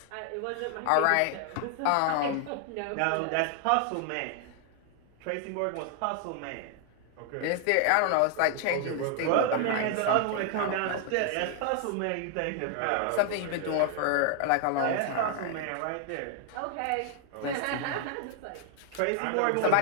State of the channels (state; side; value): different; both; correlation 0.00